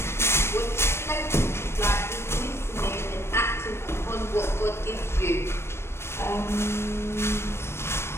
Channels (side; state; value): right; late; 0.12 ms